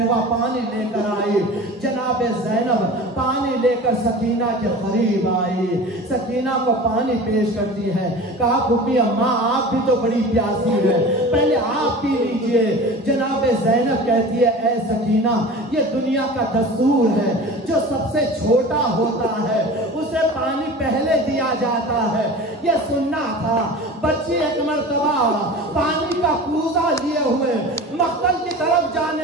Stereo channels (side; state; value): both; normal; correlation 0.36